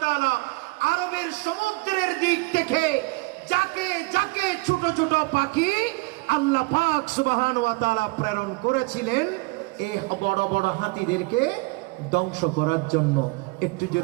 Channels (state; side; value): quieter; left; 26.0 dB